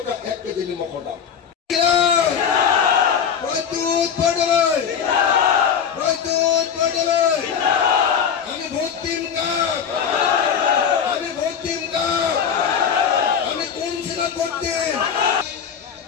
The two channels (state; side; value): quieter; right; 7.4 dB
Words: 1 কেজি নিমখৰ দাম। আমি ভোট দিম কাক? আমি ভোট দিম কাক? আমি কোন চিনত ভোট দিম?